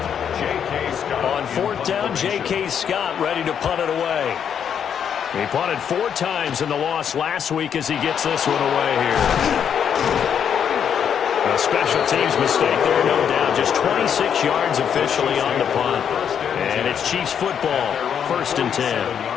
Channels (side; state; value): right; quieter; 8.1 dB